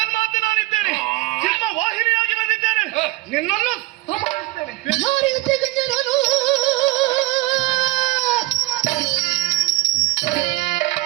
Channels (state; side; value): quieter; left; 19.9 dB